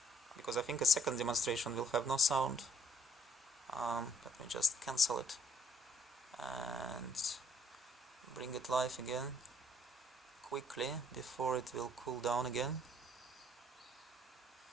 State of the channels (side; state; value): both; normal; correlation 0.65